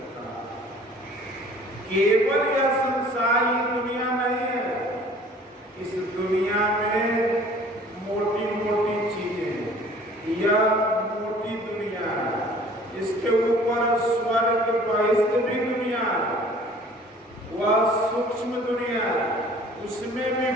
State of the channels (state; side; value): normal; both; correlation 0.50